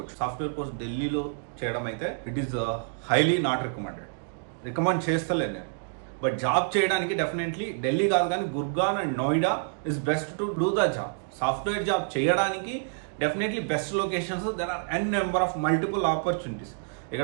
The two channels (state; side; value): silent; left; digital silence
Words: సాఫ్ట్వేర్ కోర్స్ ఢిల్లీలో చేయడం అయితే it is highly not recommend చేస్తలేను నేను. బట్ జాబ్ చేయడానికి డెఫినెట్లీ ఢిల్లీ కాదు కానీ Gurgaon and Noida is best to do the job. Software job చేయడానికి definitely best locations, there are n number of multiple opportunities.